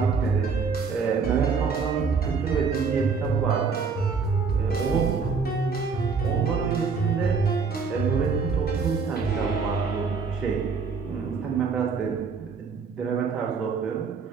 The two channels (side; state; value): left; quieter; 5.2 dB